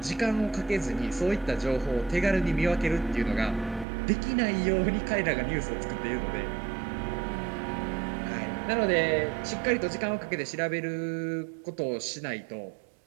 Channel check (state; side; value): drops out; left; at 3.9 s